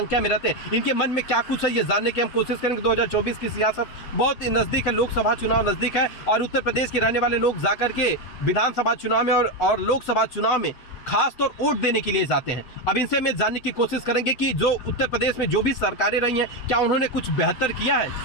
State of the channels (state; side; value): late; right; 8.0 ms